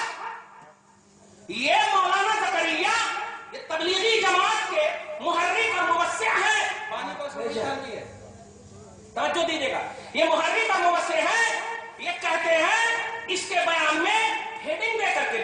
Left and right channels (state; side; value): identical; both; correlation 1.00